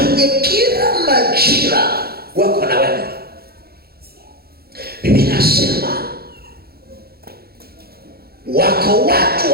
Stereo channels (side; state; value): left; late; 0.45 ms